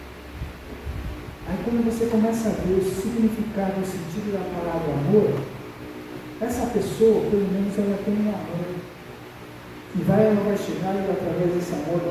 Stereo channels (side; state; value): both; identical; correlation 1.00